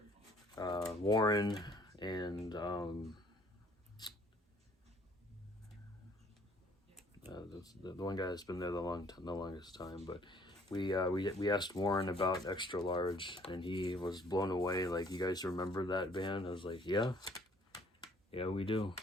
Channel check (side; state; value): both; normal; correlation 0.58